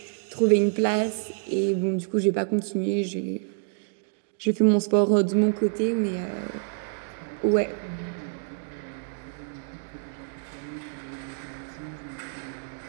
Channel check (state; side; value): silent; left; digital silence